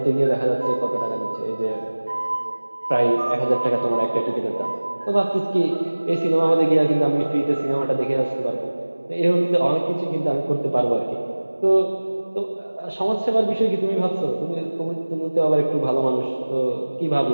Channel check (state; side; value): inverted; both; correlation -1.00